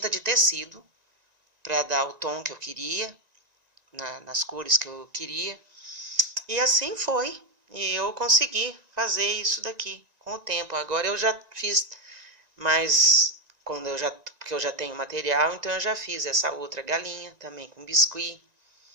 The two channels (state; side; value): late; left; 1.9 ms